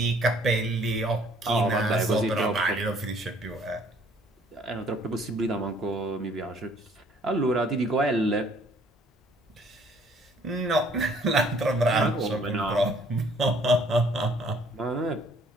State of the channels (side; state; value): both; normal; correlation 0.60